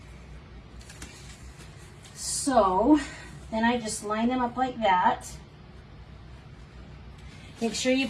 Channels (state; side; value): identical; both; correlation 1.00